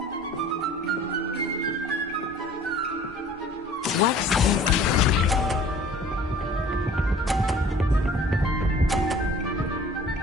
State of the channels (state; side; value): normal; both; correlation 0.49